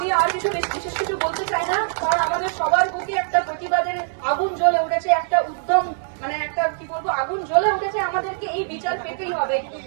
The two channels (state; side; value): silent; left; digital silence